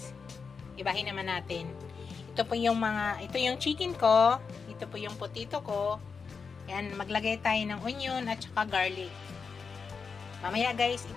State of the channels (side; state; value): right; quieter; 5.4 dB